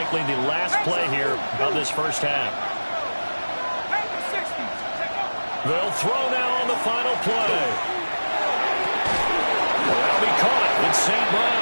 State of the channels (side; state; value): both; inverted; correlation -1.00